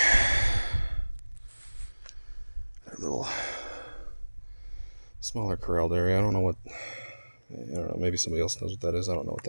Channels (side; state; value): both; inverted; correlation -1.00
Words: that little smaller corralled area. I don't know, maybe somebody else knows what that is. I don't know what